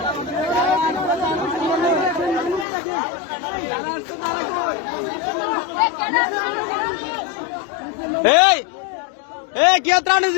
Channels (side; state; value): right; drops out; at 2.7 s